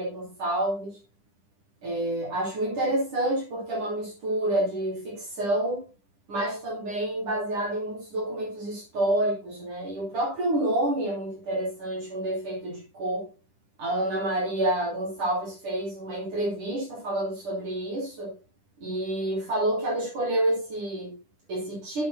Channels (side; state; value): left; late; 10 ms